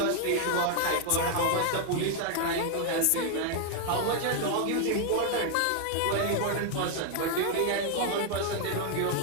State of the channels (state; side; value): different; both; correlation 0.00